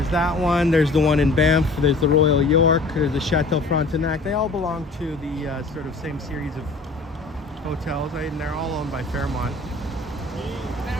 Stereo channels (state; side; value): quieter; right; 3.3 dB